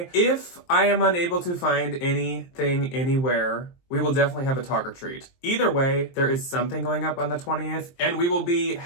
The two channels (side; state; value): right; late; 23 ms